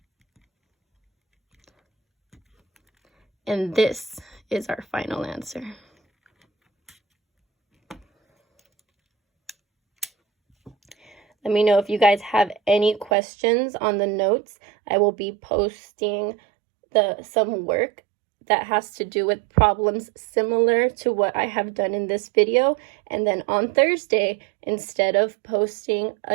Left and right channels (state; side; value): drops out; left; at 13.1 s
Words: And this is our final answer. Let me know if you guys have any questions on the notes. I will be posting some work that has to do with problems similar to what I have done in this video. And then on Thursday, instead of posting